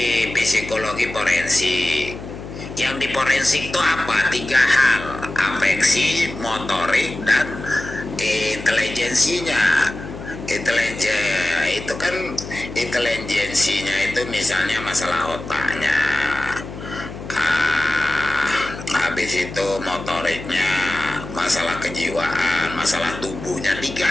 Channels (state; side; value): noise; left; hum, 11 dB below the sound